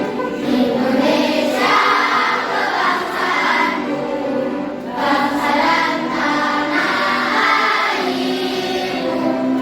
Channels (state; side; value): identical; both; correlation 1.00